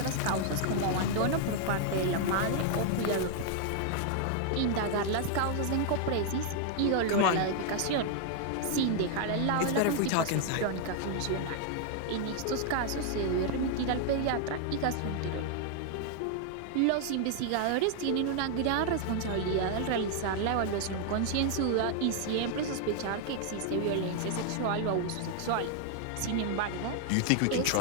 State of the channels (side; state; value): both; different; correlation 0.00